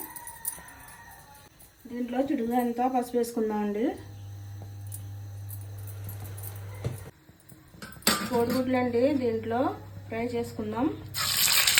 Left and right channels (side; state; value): both; identical; correlation 1.00